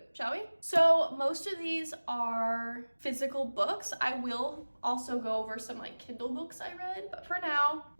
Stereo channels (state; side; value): inverted; both; correlation -1.00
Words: shall we? So most of these are physical books. I will also go over some like Kindle books I read, but for now,